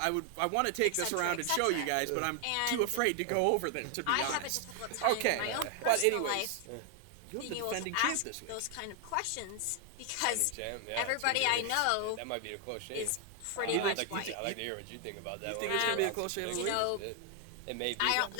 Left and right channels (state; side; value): different; both; correlation 0.00